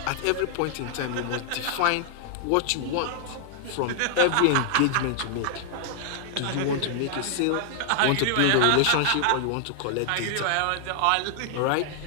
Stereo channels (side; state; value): both; different; correlation 0.00